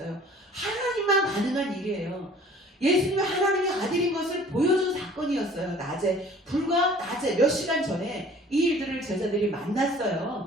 하나님만 가능한 일이에요. 예수님이 하나님의 아들인 것을 보여준 사건이었어요. 불과 낮에 몇 시간 전에 이 일들을 제자들이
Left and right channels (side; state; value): both; normal; correlation 0.50